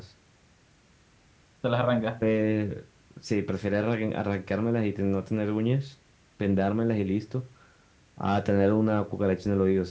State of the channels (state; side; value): identical; both; correlation 1.00